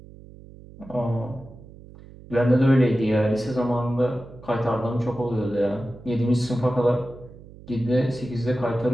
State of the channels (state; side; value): noise; right; hum, 19 dB below the sound